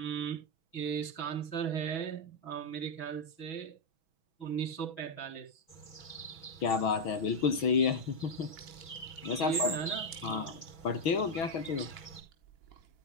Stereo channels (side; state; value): right; late; 6.2 ms